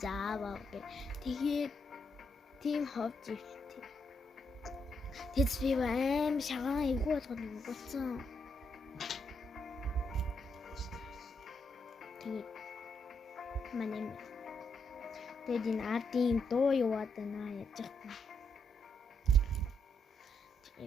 зааваа гэ. Тэгээд тийм ховж ивтэй. Тэд би аим шагаан эвгүй болгоод өгсөн. Тэгээд манай тэгээд энэ ардын дуу яваад байна яаж яах вэ?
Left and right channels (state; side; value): normal; both; correlation 0.78